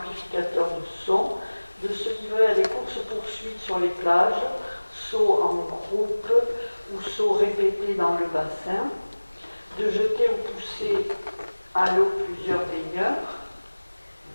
de son, de se livrer à des courses-poursuites sur les plages, sauts en groupe ou sauts répétés dans le bassin, de jeter ou pousser à l'eau plusieurs baigneurs,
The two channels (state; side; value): inverted; both; correlation -1.00